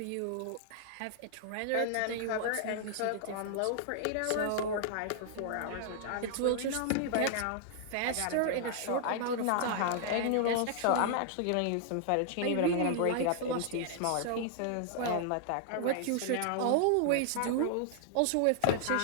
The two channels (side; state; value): both; different; correlation -0.01